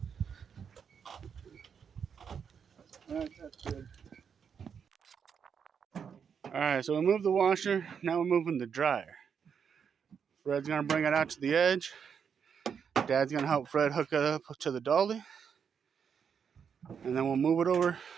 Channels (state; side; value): quieter; left; 7.0 dB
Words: That's good. Alright, so we moved the washer. Now we're moving the dryer. Fred's going to bring it out to the edge. Dad's going to help Fred hook it up to the dolly. And then we'll move it over